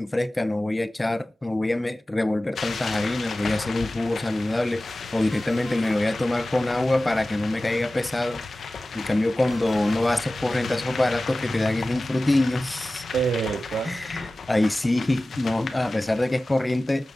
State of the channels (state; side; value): normal; both; correlation 0.96